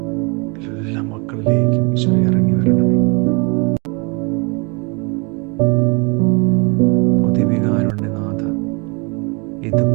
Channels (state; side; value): quieter; left; 31.3 dB